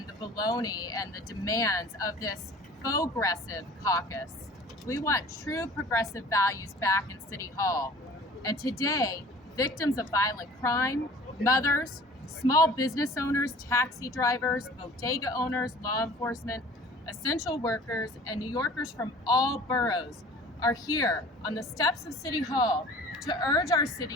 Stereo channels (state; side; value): normal; both; correlation 0.46